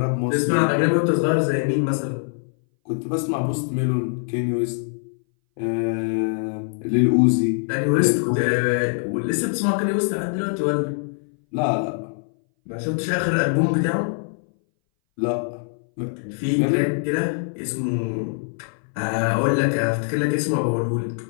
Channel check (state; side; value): silent; right; 60 dB below the other